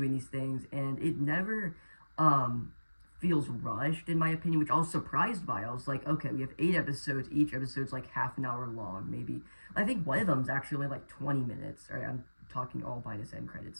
these things, and it never feels rushed, in my opinion, which I was surprised by. I was like, okay, we have 8 episodes, each episode's like half an hour long, maybe. I think one of them's actually only like 20 minutes. All right, I'm talking all minus end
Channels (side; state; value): both; inverted; correlation -1.00